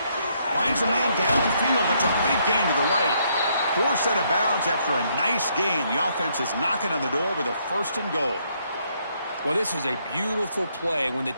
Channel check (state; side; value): inverted; both; correlation -0.72